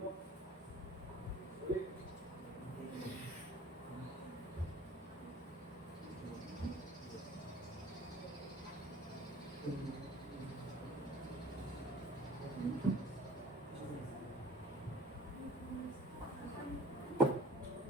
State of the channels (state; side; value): normal; both; correlation 0.48